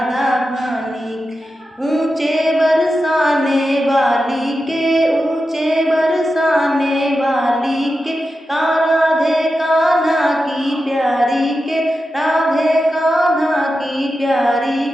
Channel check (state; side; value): normal; both; correlation 0.90